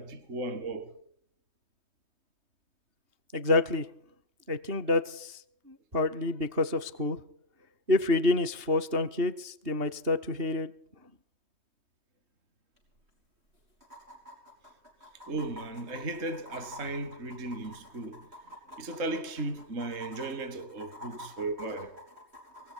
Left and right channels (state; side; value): late; left; 3.2 ms